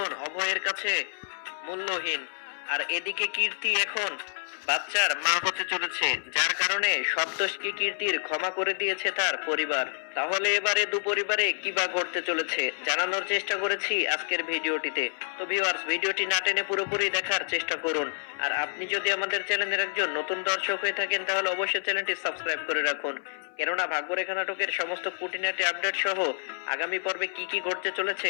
অভয়ের কাছে মূল্যহীন, আর এদিকে কীর্তি এখন বাচ্চার মা হতে চলেছে, যার কারণে সব দোষকে কীর্তির ক্ষমা করে দিয়েছে তার পরিবার। তাহলে এবারে দু পরিবারে কি বা ঘটতে চলেছে জানানোর চেষ্টা করেছি আজকের ভিডিওটিতে। তো ভিউয়ার্স, ভিডিওটি না টেনে পুরোপুরি দেখার চেষ্টা করুন। আর আপনি যদি আমাদের চ্যানেলের একজন নতুন দর্শক হয়ে থাকেন তাহলে অবশ্যই চ্যানেলটি সাবস্ক্রাইব করে রাখুন, কেননা ভাগ্যরেখা নাটকের সমস্ত খুঁটিনাটি আপডেট সহ আগামী পর্বে কি কি ঘটতে চলেছে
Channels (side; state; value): right; silent; 59 dB below the other